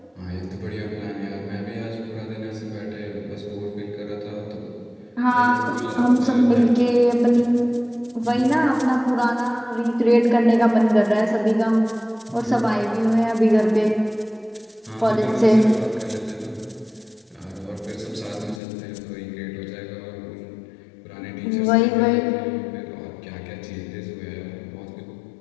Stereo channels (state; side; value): drops out; right; at 18.6 s